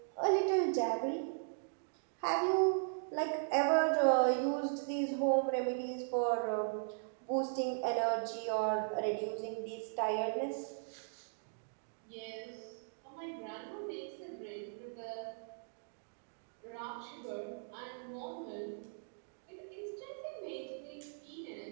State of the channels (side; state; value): left; silent; digital silence